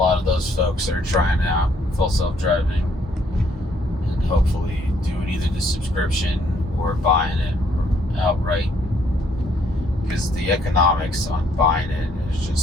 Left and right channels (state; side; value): normal; both; correlation 0.67